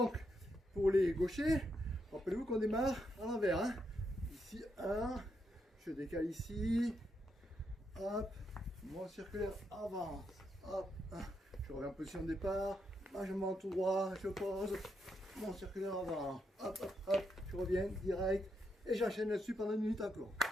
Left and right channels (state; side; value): normal; both; correlation 0.81